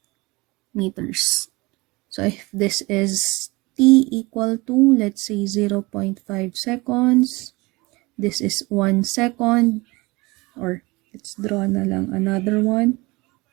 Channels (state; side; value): quieter; left; 23.4 dB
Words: meters. So if this is t equal to, let's say, 0.5 seconds, this is 1 second, or let's draw na lang another one.